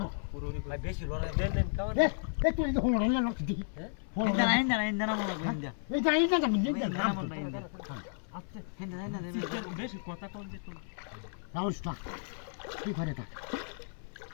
পুরো ভাই বেশি লড়াই দেন দেন কেমন এ তুই তো হলো না না দেখি ইন্দা না মনে লাগবে ইন্দা এই যাই না যাবেন ইন্দা দেখি না মনে ইন্দা আচ্ছা ইন্দা বেশি কথা কম যে রাউসটা কি করে তা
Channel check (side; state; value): right; silent; 56 dB below the other